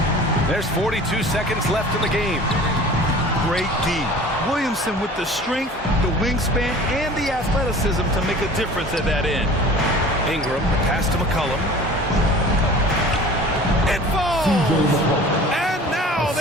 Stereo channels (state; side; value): normal; both; correlation 0.43